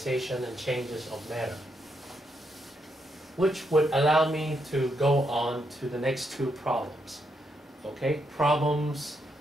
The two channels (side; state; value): both; normal; correlation 0.79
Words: and changes of matter, which would allow me to go on to the next two problems. Okay? Problems